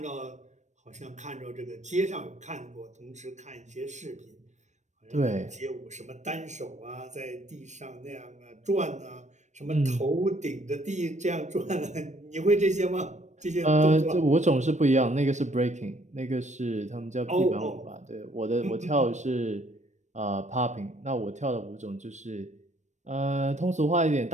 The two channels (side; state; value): left; late; 0.34 ms